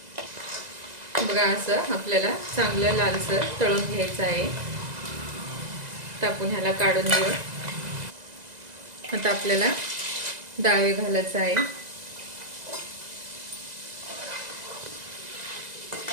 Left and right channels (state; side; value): late; left; 2.0 ms